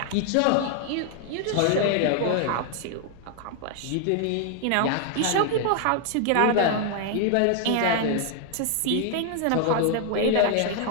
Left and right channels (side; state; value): both; different; correlation 0.00